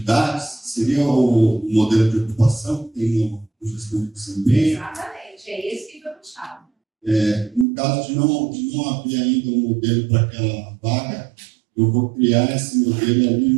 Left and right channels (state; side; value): drops out; left; at 7.7 s